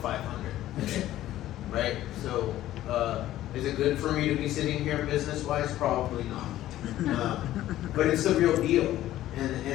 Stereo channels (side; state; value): right; quieter; 13.9 dB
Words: right? So, is it good for me to be sitting here business-wise? Probably not. But it's the real deal,